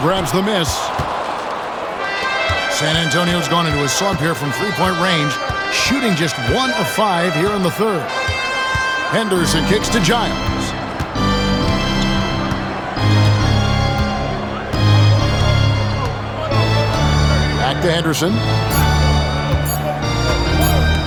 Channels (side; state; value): both; identical; correlation 1.00